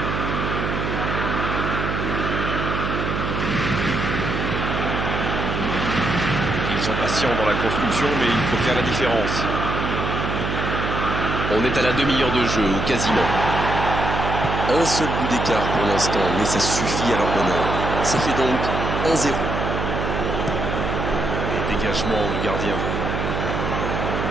Ils sont patients dans la construction, mais il faut faire la différence. On est à la demi-heure de jeu, ou quasiment. Un seul but d'écart pour l'instant, mais ça suffit à leur bonheur. Ça fait donc 1-0. Dégagement du gardien.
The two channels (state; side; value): noise; right; hum, 2 dB below the sound